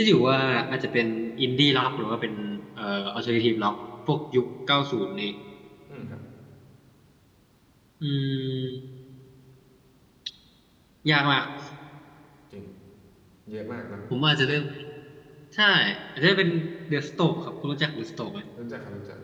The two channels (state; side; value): identical; both; correlation 1.00